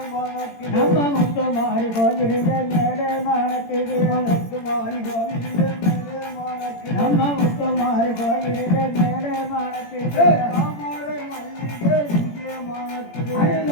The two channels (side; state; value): right; late; 18 ms